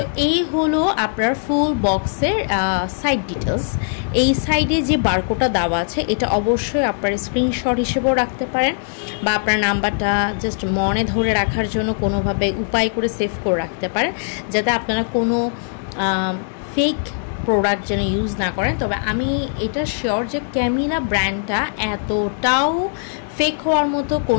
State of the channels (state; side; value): silent; right; digital silence